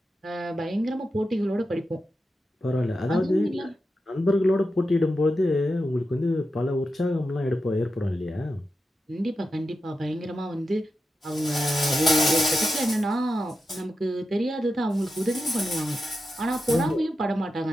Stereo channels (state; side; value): normal; both; correlation 0.90